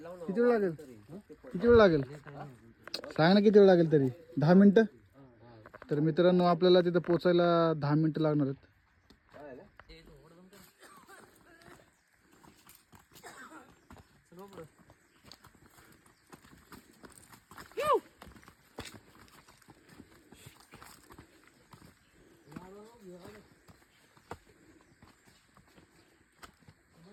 किती वेळ लागेल? किती वेळ लागेल सांग ना, किती वेळ लागेल तरी? 10 मिनिटं. तर मित्रांनो, आपल्याला तिथं पोचायला 10 मिनिटं लागणार आहेत.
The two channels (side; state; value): both; identical; correlation 1.00